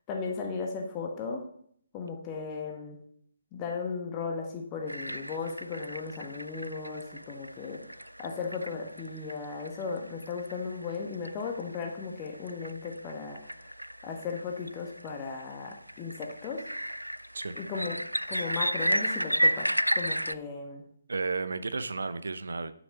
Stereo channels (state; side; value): inverted; both; correlation -0.78